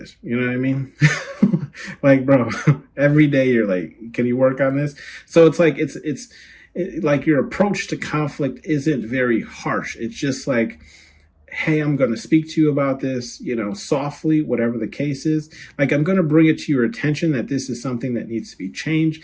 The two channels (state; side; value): identical; both; correlation 1.00